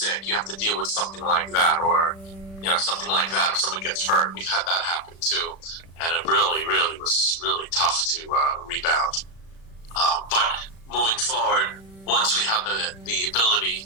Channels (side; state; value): right; late; 36 ms